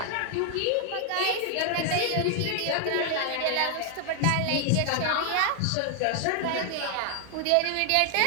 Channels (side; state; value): both; different; correlation 0.00